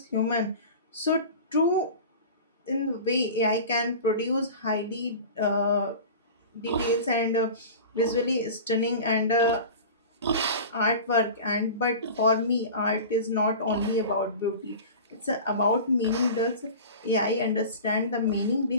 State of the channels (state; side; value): inverted; both; correlation -0.35